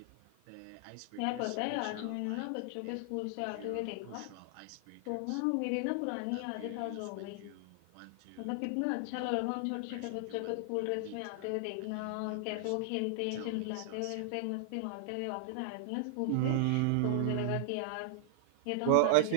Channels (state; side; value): different; both; correlation -0.01